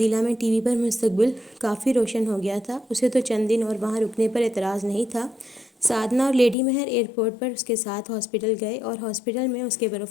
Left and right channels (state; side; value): drops out; right; at 6.6 s